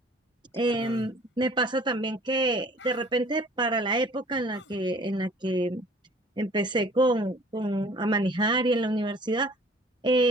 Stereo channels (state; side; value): normal; both; correlation 0.52